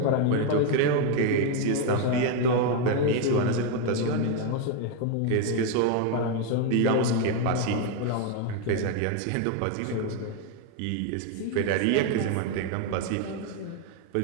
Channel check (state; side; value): different; both; correlation 0.01